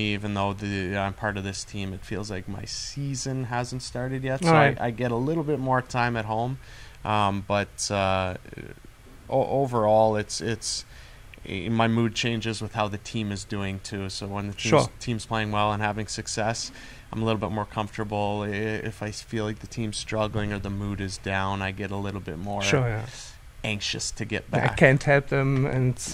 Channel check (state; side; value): identical; both; correlation 1.00